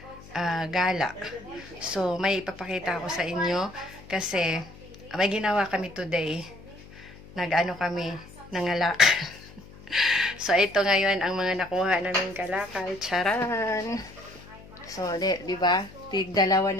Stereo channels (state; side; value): noise; left; hum, 20 dB below the sound